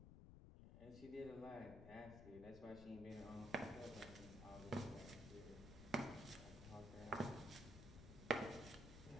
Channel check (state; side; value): noise; left; rumble, 11 dB below the sound